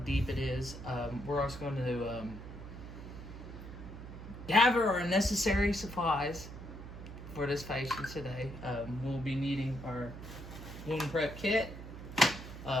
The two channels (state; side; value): noise; right; hum, 11 dB below the sound